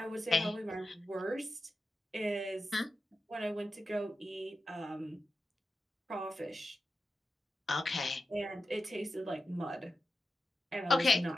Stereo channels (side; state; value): both; normal; correlation 0.90